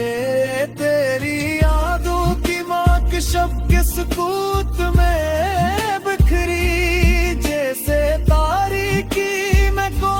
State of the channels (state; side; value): identical; both; correlation 1.00